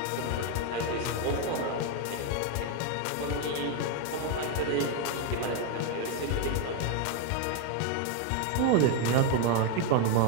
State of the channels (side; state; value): both; different; correlation 0.01